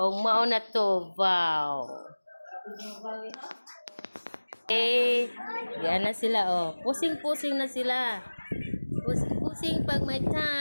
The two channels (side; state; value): both; inverted; correlation -1.00